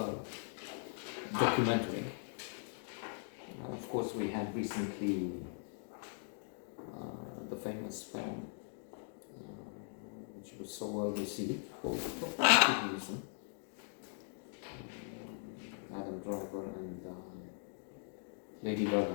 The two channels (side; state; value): right; silent; digital silence